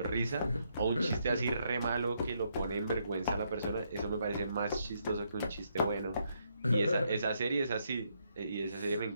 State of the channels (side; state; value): both; inverted; correlation -0.76